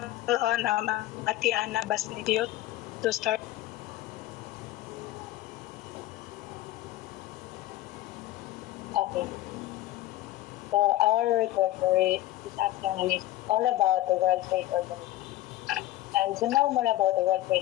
on Ate Ana Basnillo to start. Okay. So our report for this afternoon is all about the World Trade Organization. And to know more about the World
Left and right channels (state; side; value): quieter; right; 15.5 dB